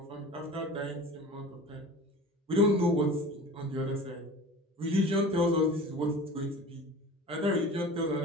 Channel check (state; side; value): normal; both; correlation 0.38